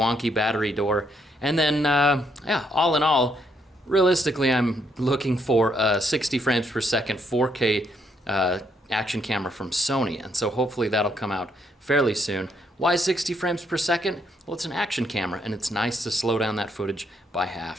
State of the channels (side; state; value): both; normal; correlation 0.73